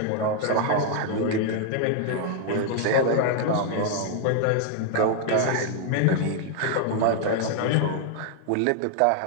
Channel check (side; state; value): both; different; correlation 0.00